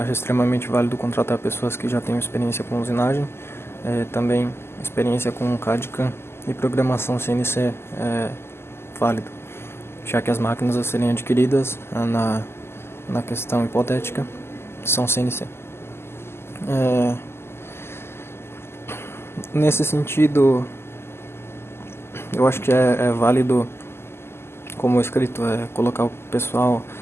extremamente válido contratar pessoas que já tenham experiência com usinagem, também experiência com CAD/CAM e programação CNC válido, já que as máquinas a serem adquiridas na questão hipotética são CNC. Nesse sentido, eu acho que é válido, como escrito,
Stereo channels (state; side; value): late; right; 0.12 ms